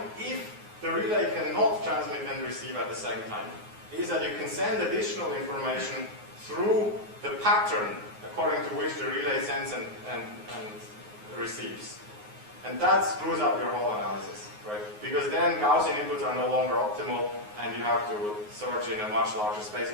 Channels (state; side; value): late; left; 9.5 ms